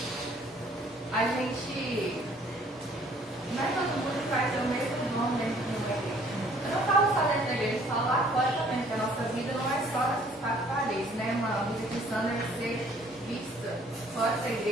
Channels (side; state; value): both; normal; correlation 0.58